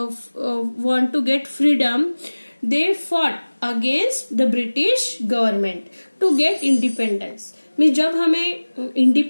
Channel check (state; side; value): inverted; both; correlation -1.00